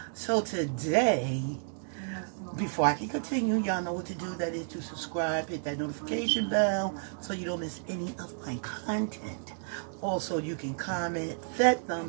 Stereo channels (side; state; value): left; silent; digital silence